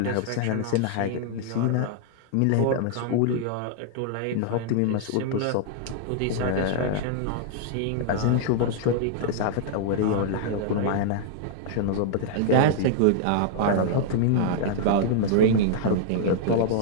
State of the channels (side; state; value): both; different; correlation -0.01